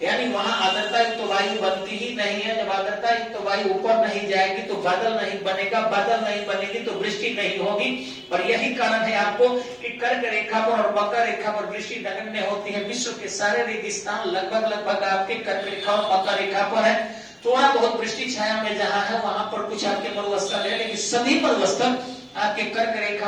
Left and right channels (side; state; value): both; identical; correlation 1.00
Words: यानी वहां आर्द्रता युक्त तो वायु बनती ही नहीं है। जब आर्द्रता युक्त तो वायु ऊपर नहीं जाएगी तो बादल नहीं बनेगा, बादल नहीं बनेगी तो वृष्टि नहीं होगी। और यही कारण है आपको कि कर्क रेखा पर और मकर रेखा पर वृष्टि नगण्य होती है। विश्व के सारे रेगिस्तान लगभग आपके कर्क रेखा और मकर रेखा पर है। थोड़ा बहुत वृष्टि छाया में जहां है वहां पर कुछ आपके मरुस्थल है, लेकिन सभी मरुस्थल आपके कर्क